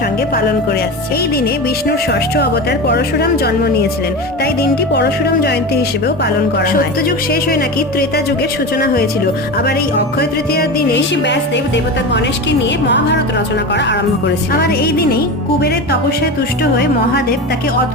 সঙ্গে পালন করে আসছে। এই দিনে বিষ্ণুর ষষ্ঠ অবতার পরশুরাম জন্ম নিয়েছিলেন, তাই দিনটি পরশুরাম জয়ন্তী হিসেবেও পালন করা হয়। সত্যযুগ শেষ হয়ে নাকি ত্রেতা যুগের সূচনা হয়েছিল। আবার এই অক্ষয় তৃতীয়ার দিনে ঋষি ব্যাসদেব দেবতা গণেশকে নিয়ে মহাভারত রচনা করা আরম্ভ করেছিল। আবার এই দিনেই কুবেরের তপস্যায় তুষ্ট হয়ে মহাদেব তাকে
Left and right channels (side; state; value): both; normal; correlation 0.25